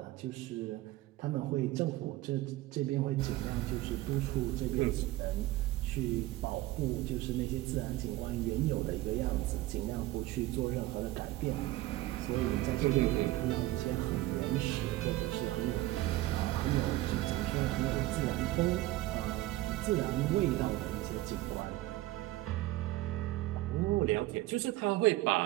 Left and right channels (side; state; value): left; quieter; 17.0 dB